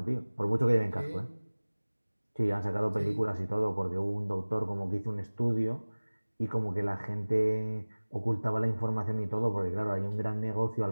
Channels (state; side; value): inverted; both; correlation -1.00